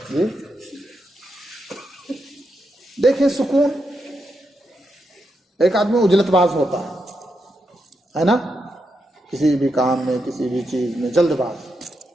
جی دیکھیں، سکون، ایک آدمی اجلت باز ہوتا ہے نا، کسی بھی کام میں، کسی بھی چیز میں جلد باز.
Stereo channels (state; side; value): normal; both; correlation 0.84